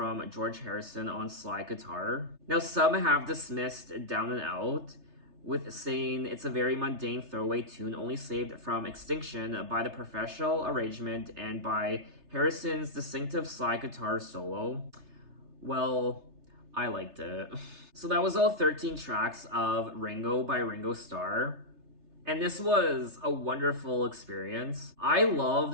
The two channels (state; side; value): late; left; 3.3 ms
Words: George Harrison on slide guitar. Now, some have dismissed Down and Out with saying it's a very mundane throwaway tune only saved from extinction by the professional arrangement and by Harrison's distinctive slide guitar solo. Well, I liked it. So that was all 13 tracks of Ringo by Ringo Starr. And this was a wonderful experience. I